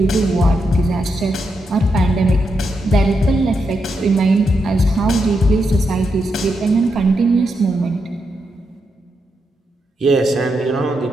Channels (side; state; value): both; normal; correlation 0.83